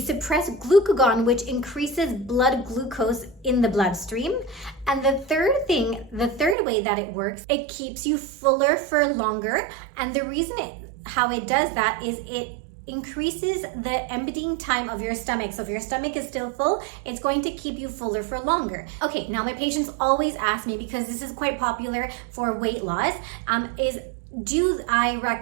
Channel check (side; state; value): left; drops out; at 6.6 s